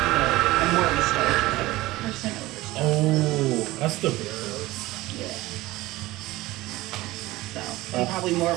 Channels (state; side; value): quieter; left; 18.5 dB